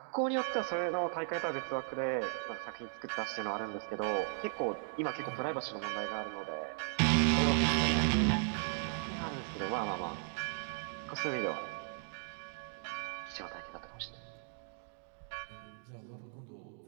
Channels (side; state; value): left; silent; 53 dB below the other